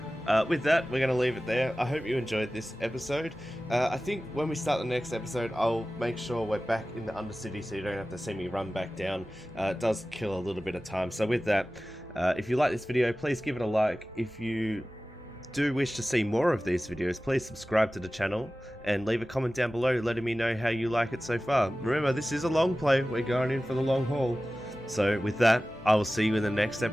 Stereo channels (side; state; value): both; normal; correlation 0.96